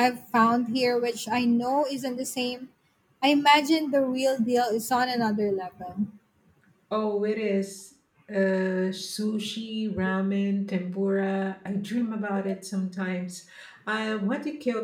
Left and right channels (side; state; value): both; identical; correlation 1.00